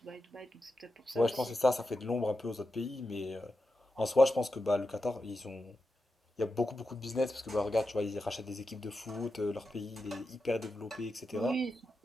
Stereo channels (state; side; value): normal; both; correlation 0.89